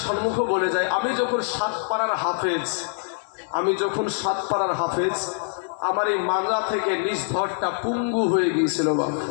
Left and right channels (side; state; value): right; silent; 62 dB below the other